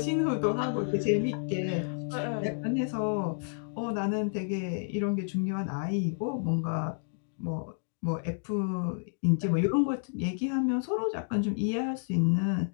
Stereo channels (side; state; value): right; silent; digital silence